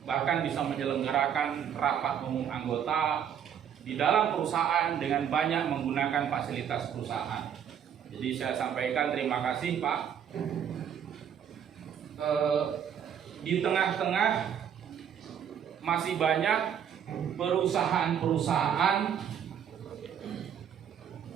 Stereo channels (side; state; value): left; quieter; 8.7 dB